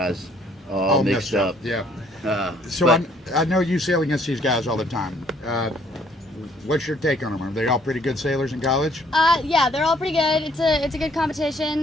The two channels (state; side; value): normal; both; correlation 0.63